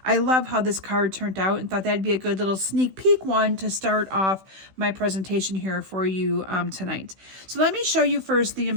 I love how this card turned out and thought that'd be a good little sneak peek one to start off my presentation here for you tonight. So let me show you first the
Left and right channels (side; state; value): left; late; 16 ms